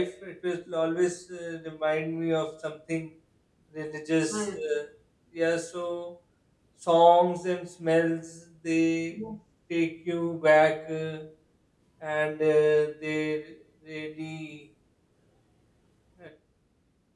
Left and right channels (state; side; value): identical; both; correlation 1.00